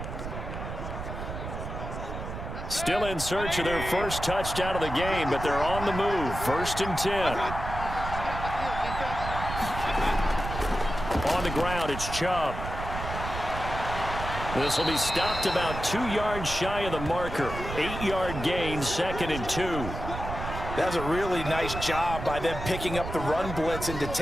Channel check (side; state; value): right; noise; rumble, 7 dB below the sound